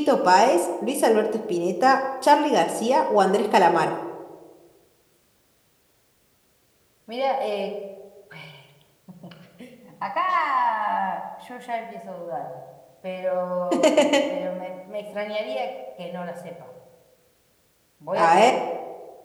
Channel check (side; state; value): both; identical; correlation 1.00